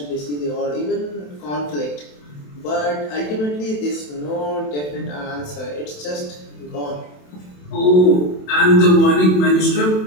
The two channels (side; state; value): right; late; 27 ms